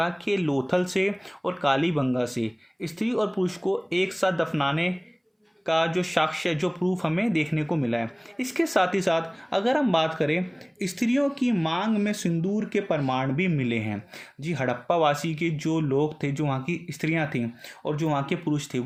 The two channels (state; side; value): identical; both; correlation 1.00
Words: कि लोथल से और कालीबंगा से स्त्री और पुरुष को एक साथ दफनाने का जो साक्ष्य, जो प्रूफ हमें देखने को मिला है। इसके साथ ही साथ अगर हम बात करें, स्त्रियों की मांग में सिंदूर के प्रमाण भी मिले हैं। जी, हड़प्पा वासी के जो लोग थे, जो वहाँ की स्त्रियाँ थीं और जो वहाँ के पुरुष थे,